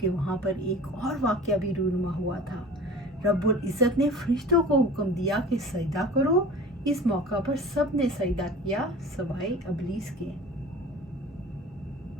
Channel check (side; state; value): both; normal; correlation 0.40